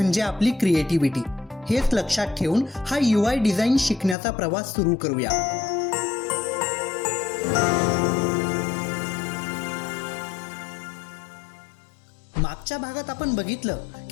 आपली क्रिएटिव्हिटी. हेच लक्षात ठेवून हा UI डिझाईन शिकण्याचा प्रवास सुरू करूया. मागच्या भागात आपण बघितलं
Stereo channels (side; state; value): right; drops out; at 4.2 s